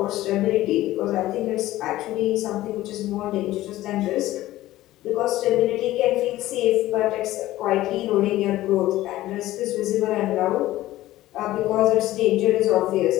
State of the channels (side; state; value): right; quieter; 15.7 dB